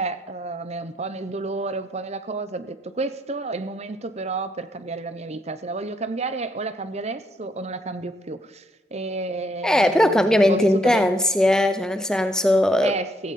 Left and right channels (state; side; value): normal; both; correlation 0.73